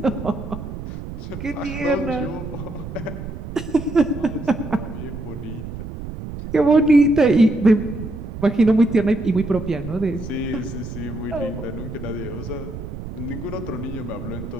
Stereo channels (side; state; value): right; noise; rumble, 9 dB below the sound